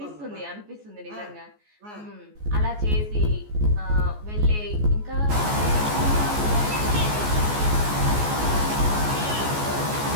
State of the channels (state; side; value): late; left; 14 ms